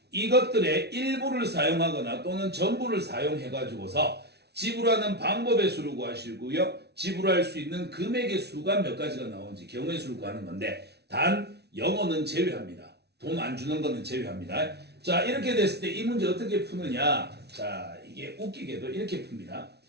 이것들의 일부를 사용하거나 또는 전부를 사용해가지고서 지불하는 방법의 수를 구하시고요. 지불할 수 있는 금액의 수가 몇 가지가 나오는지 경우의 수를 구하는 건데 단 영어는 제외합니다. 돈 안 주는 거는 제외합니다. 자, 이렇게 됐을 때 이 문제 어떻게 푸느냐? 자, 이게 웃기게도 이렇게 풉니다.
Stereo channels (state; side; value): late; left; 0.49 ms